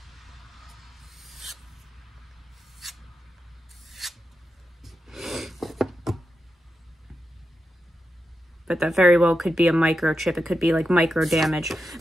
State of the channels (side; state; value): both; normal; correlation 0.89